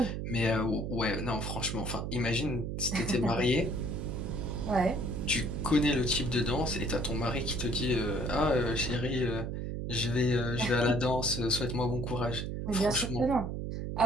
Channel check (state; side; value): noise; right; hum, 3 dB below the sound